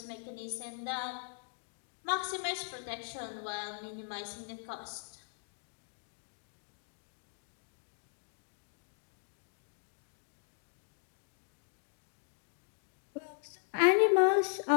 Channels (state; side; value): silent; right; digital silence